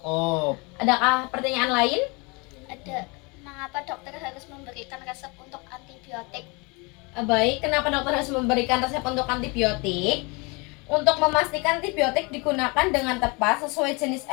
Adakah pertanyaan lain? Ada. Mengapa dokter harus memberikan resep untuk antibiotik? Baik, kenapa dokter harus memberikan resep untuk antibiotik? Untuk memastikan antibiotik digunakan dengan tepat sesuai jenis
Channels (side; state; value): right; quieter; 28.6 dB